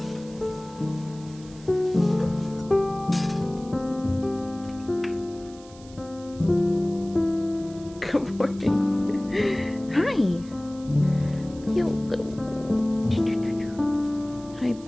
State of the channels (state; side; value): noise; right; hiss, 23 dB below the sound